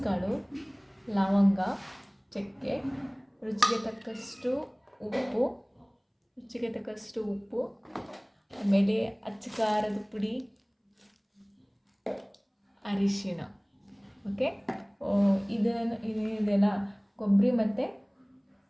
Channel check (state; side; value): identical; both; correlation 1.00